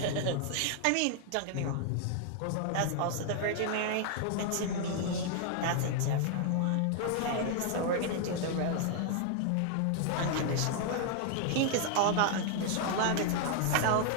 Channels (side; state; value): both; different; correlation 0.00